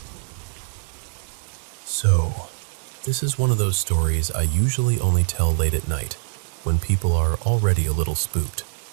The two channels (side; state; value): left; silent; digital silence